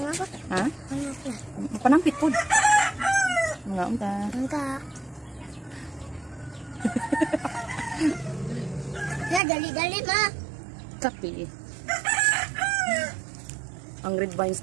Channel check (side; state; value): left; drops out; at 9.4 s